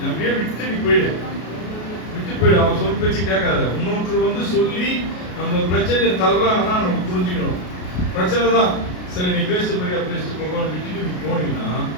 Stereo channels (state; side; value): late; right; 33 ms